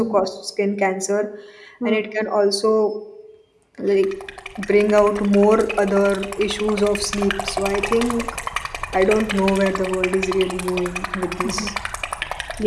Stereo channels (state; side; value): identical; both; correlation 1.00